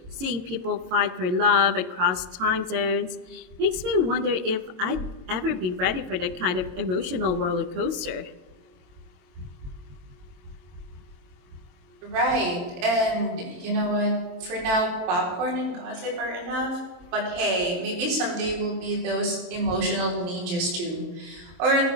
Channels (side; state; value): left; late; 22 ms